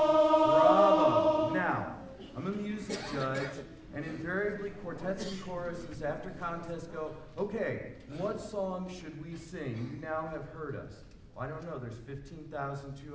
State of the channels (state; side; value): identical; both; correlation 1.00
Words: Bravo. Now, I'm a music judge, and invariably quartets and choruses after contests go, okay, what song should we sing? You now have heard us. I don't know, there's